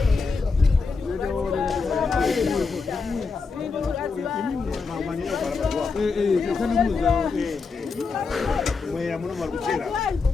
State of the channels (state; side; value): quieter; right; 4.7 dB